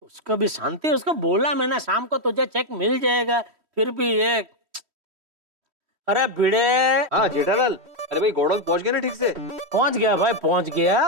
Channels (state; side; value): late; left; 3.1 ms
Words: उसको भी शांति, उसको बोला मैंने शाम को तुझे चेक मिल जाएगा, फिर भी ये। अरे भिड़े। हाँ जेठालाल, अरे भाई गोडाउन पहुंच गए ना ठीक से? पहुंच गया भाई, पहुंच गया।